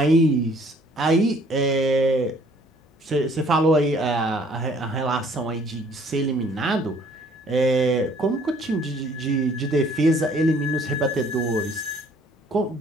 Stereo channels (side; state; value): both; normal; correlation 0.58